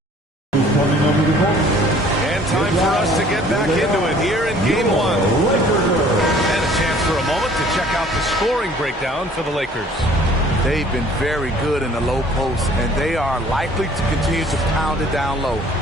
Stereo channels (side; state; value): both; normal; correlation 0.54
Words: Who's coming over the court? And time for us to get back into it here in game one. And a chance for a moment to check out the scoring breakdown for the Lakers. They've been very good in the low post, and they are likely to continue to pound it down low,